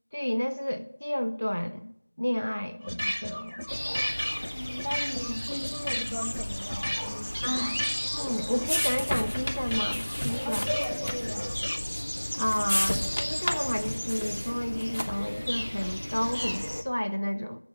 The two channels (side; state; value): both; inverted; correlation -1.00